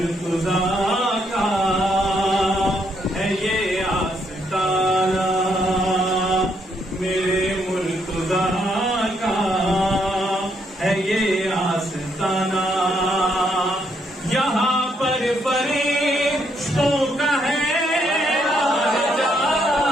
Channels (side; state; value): both; normal; correlation 0.74